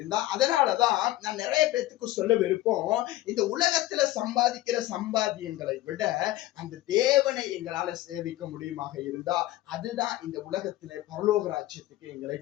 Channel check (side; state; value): right; quieter; 16.2 dB